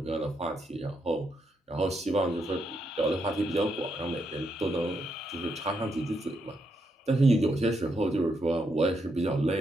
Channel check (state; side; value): normal; both; correlation 0.80